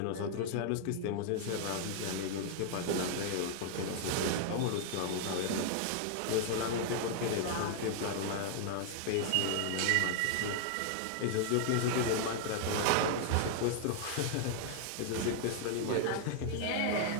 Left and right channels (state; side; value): different; both; correlation 0.00